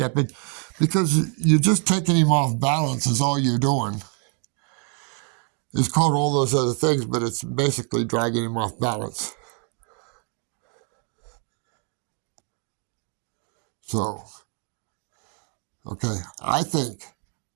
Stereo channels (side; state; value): left; quieter; 39.0 dB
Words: because you're just taking him off balance is all you're doing. It's called all those other things, but it's basically dragging him off balance. So, okay, I think